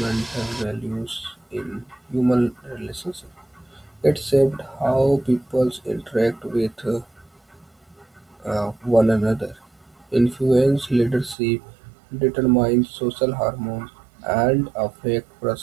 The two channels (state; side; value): drops out; left; at 11.4 s